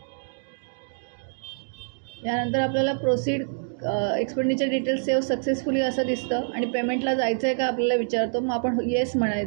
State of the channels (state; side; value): silent; left; digital silence